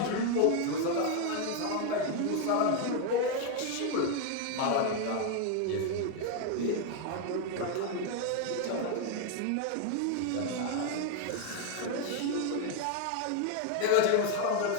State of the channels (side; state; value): both; different; correlation 0.01